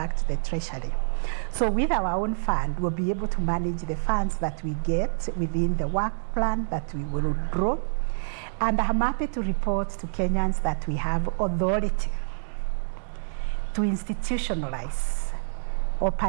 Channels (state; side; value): silent; left; digital silence